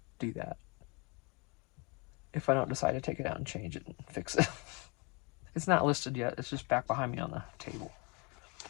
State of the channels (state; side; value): quieter; right; 29.4 dB